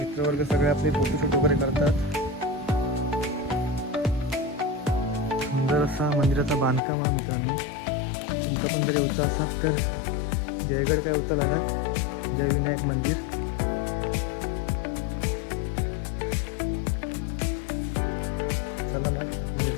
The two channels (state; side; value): drops out; right; at 6.8 s